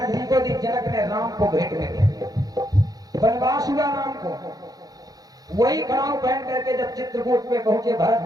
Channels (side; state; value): left; late; 0.18 ms